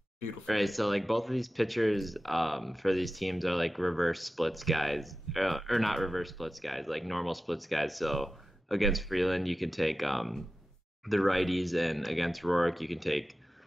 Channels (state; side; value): normal; both; correlation 0.94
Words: Beautiful. Right, so like both of these pitchers for these teams are like reverse splits guys, or not reverse splits guys, like normal splits guys. So against Freeland, you can take the righties, and against Roark, you can take